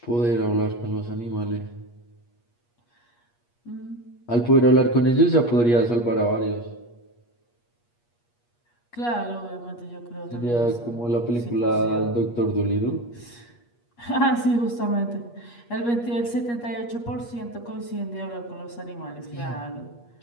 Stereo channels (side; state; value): right; late; 8.4 ms